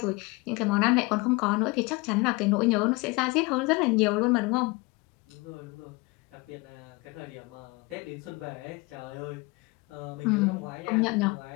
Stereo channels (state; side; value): quieter; right; 25.5 dB